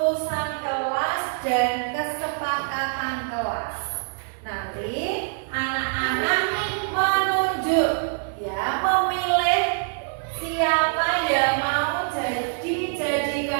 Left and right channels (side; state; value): left; silent; 62 dB below the other